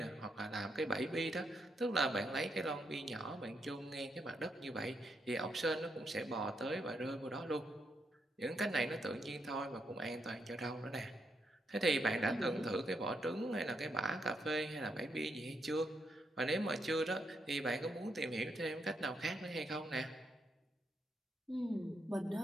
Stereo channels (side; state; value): both; normal; correlation 0.79